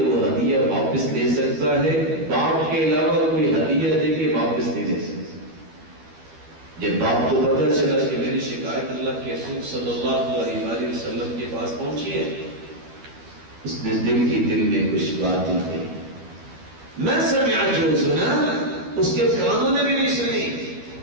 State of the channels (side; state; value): left; late; 12 ms